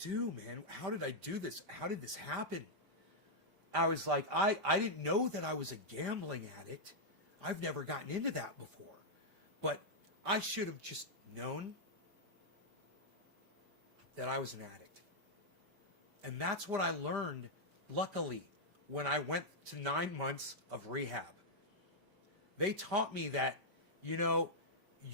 do, man? How did I do this? How did this happen? I was like, I didn't know that I was a gambling addict. I've never gotten into that before. But I should have just known. that I was an addict. And that's what I learned, luckily, when I went to 9 months of rehab. They taught me that, you know,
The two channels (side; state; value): left; late; 5.1 ms